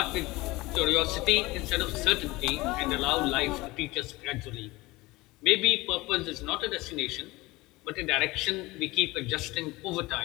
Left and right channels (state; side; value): quieter; right; 21.1 dB